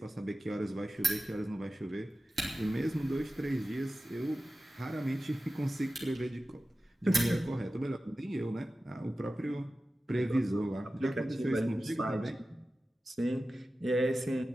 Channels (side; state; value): both; normal; correlation 0.94